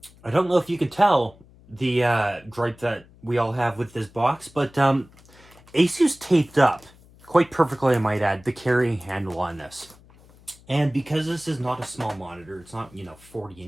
don't know if you can tell the gripe that we all have with this box, but ASUS taped up quite perfectly, I might add, the carrying handle on this. And because this is not a small monitor, it's not, you know, 40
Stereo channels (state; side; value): noise; left; hum, 26 dB below the sound